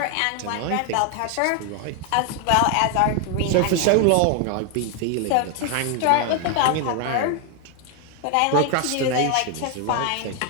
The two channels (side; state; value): both; different; correlation 0.01